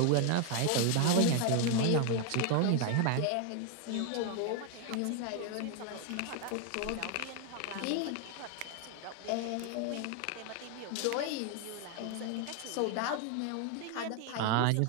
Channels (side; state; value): both; different; correlation 0.00